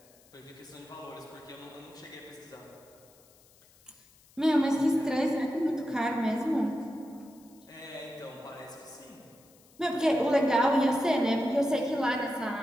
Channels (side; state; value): left; noise; hiss, 28 dB below the sound